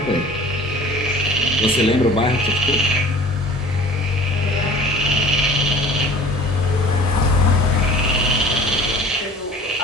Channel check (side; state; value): both; normal; correlation 0.46